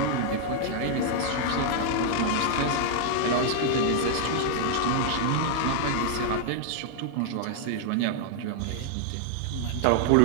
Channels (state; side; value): different; both; correlation 0.00